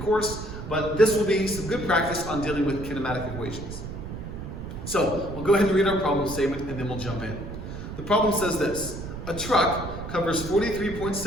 but this will be some good practice on dealing with kinematic equations. So, we'll go ahead and read our problem statement and then we'll jump in. The problem says this: a truck covers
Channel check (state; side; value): noise; right; rumble, 9 dB below the sound